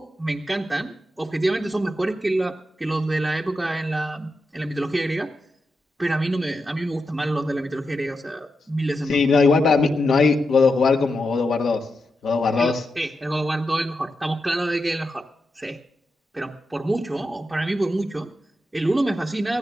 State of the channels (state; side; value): normal; both; correlation 0.87